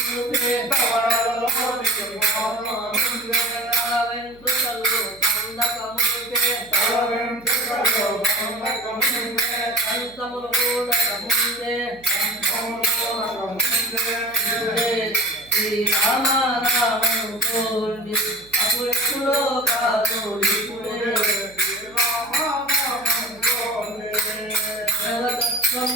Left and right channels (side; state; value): right; noise; hum, 25 dB below the sound